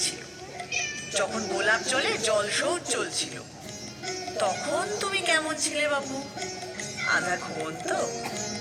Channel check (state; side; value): identical; both; correlation 1.00